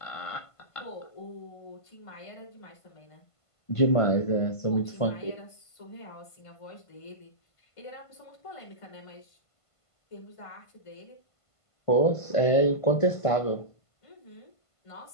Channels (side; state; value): right; late; 1.5 ms